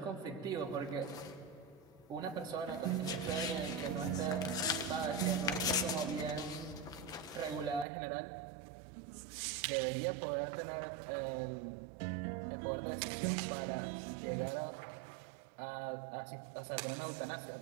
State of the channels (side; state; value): left; drops out; at 7.9 s